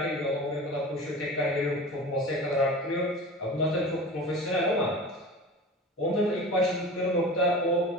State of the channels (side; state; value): both; normal; correlation 0.35